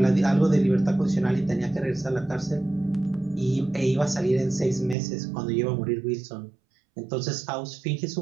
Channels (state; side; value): drops out; left; at 5.0 s